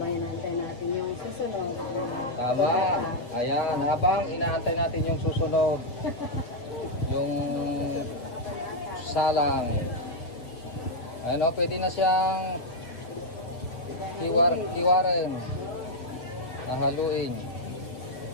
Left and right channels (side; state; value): right; late; 8.4 ms